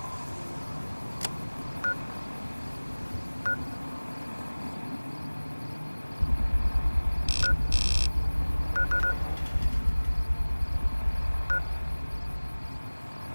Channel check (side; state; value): both; inverted; correlation -1.00